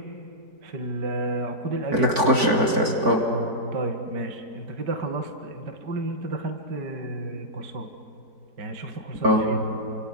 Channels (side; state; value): left; late; 4.5 ms